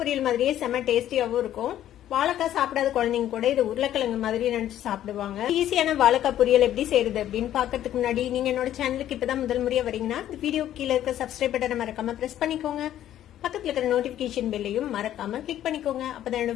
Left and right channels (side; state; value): right; quieter; 11.9 dB